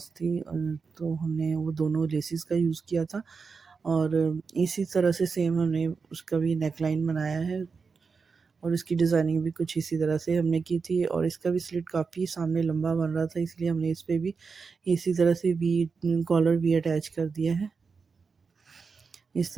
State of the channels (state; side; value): quieter; left; 5.1 dB